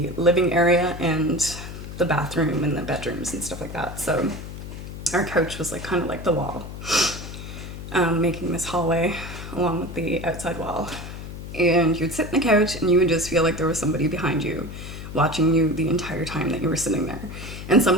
living area and the bathroom and the bedrooms and stuff like that. So our couch was like kind of like the wall, making this hallway along with the outside wall. And you'd sit in the couch and you would just feel like there was somebody behind you watching you the entire time that you were sitting there. And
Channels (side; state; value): left; noise; hum, 10 dB below the sound